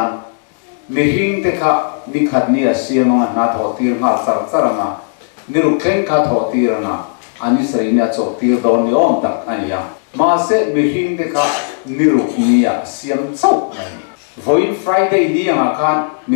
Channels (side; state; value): right; silent; digital silence